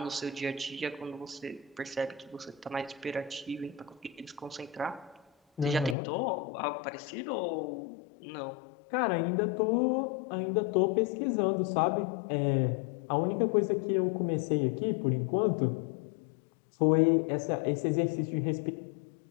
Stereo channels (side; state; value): right; drops out; at 6.0 s